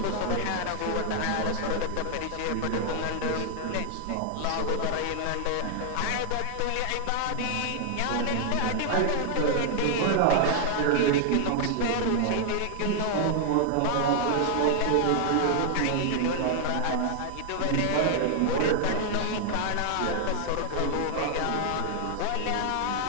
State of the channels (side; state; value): both; different; correlation 0.00